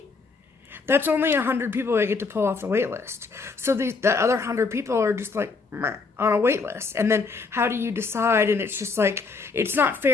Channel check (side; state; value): right; quieter; 4.4 dB